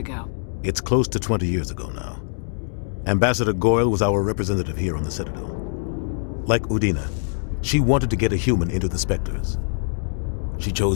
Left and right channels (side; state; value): right; silent; digital silence